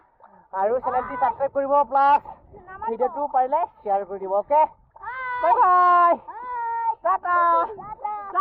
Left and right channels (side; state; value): both; identical; correlation 1.00